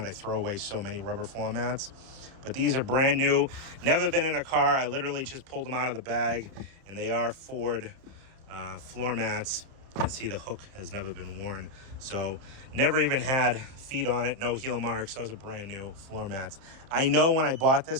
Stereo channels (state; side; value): late; left; 30 ms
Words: I throw away so many rubber floor mats. But these are brand new. Never been in a car. I literally just pulled them out of the bag. And they are Ford floor mats. You can see the hook has never been worn. So never even had feet on it. No heel marks. Those are brand new floor mats. I know when I bought